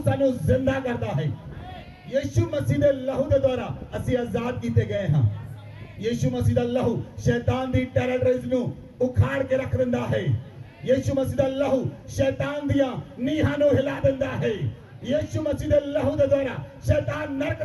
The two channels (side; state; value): both; identical; correlation 1.00